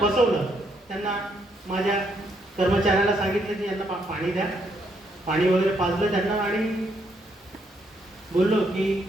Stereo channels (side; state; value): both; normal; correlation 0.74